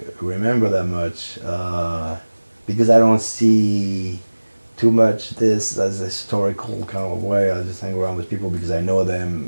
remember that much, because I don't see too much this as a historical kind of way. I just hang around with people because I know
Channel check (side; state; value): both; inverted; correlation -1.00